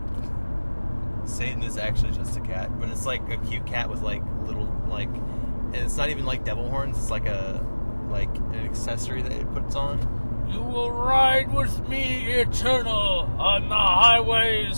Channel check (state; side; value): inverted; both; correlation -1.00